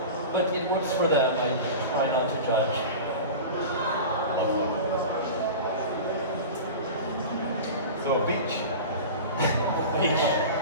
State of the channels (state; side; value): inverted; both; correlation -0.31